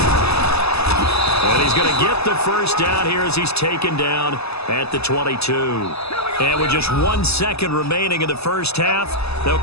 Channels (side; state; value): right; late; 0.79 ms